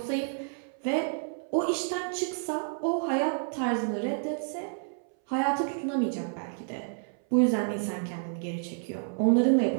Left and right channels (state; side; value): silent; left; 57 dB below the other